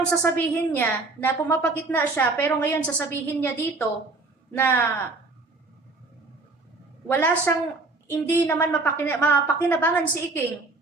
sasabihin niya, na pumapagitna siya, pero ngayon sasabihin niya dito, na wala siyang, hindi naman mapakinabangan si Iking.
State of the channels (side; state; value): left; quieter; 3.5 dB